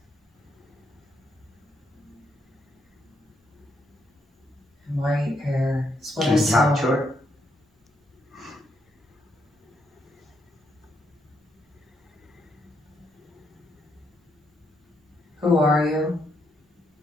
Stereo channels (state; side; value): normal; both; correlation 0.77